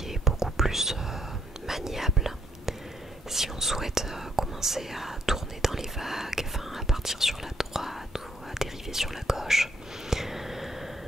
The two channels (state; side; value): normal; both; correlation 0.71